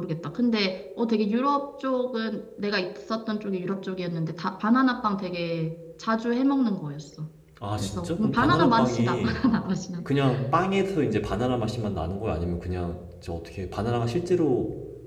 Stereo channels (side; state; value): both; identical; correlation 1.00